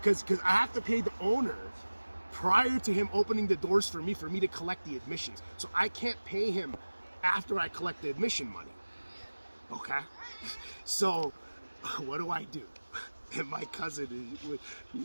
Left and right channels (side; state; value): both; inverted; correlation -1.00